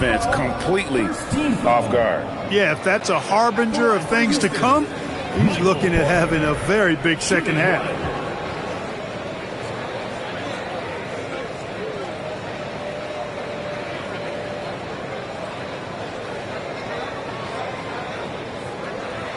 completely off guard. Yeah, if that's a harbinger of things to come, he's looking at having a very big second half.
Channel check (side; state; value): both; identical; correlation 1.00